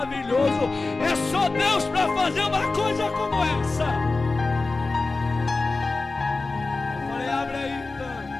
É só Deus para fazer uma coisa como essa. Eu falei: abre aí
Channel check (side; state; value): right; quieter; 3.6 dB